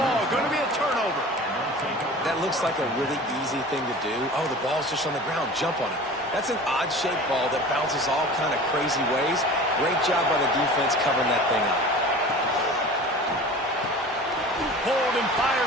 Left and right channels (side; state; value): both; normal; correlation 0.39